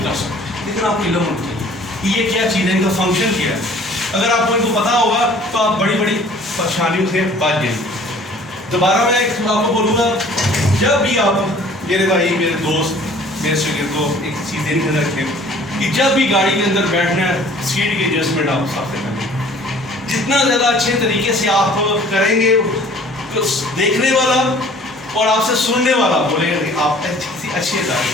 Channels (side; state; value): both; normal; correlation 0.51